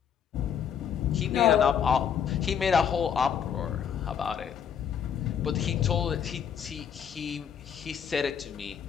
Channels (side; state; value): right; quieter; 8.1 dB